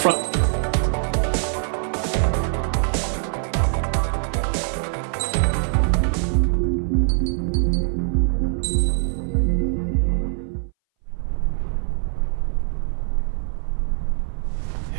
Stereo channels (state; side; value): silent; left; 60 dB below the other